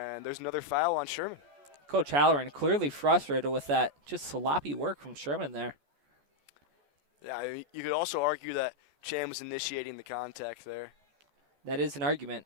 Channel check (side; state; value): left; late; 14 ms